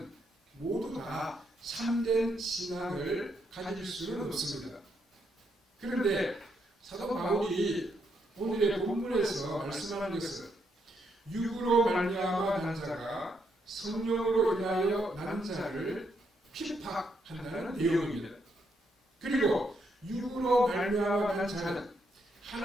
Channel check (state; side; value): normal; both; correlation 0.77